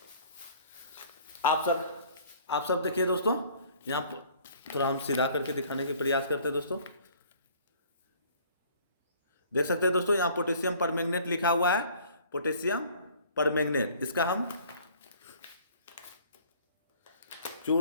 आप सब देखिए दोस्तों, यहाँ पर थोड़ा हम सीधा करके दिखाने के प्रयास करते हैं दोस्तों। देख सकते हैं दोस्तों, यहाँ पोटेशियम परमैंगनेट लिखा हुआ है, पोटेशियम परमैंगनेट। इसका हम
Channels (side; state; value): both; inverted; correlation -0.54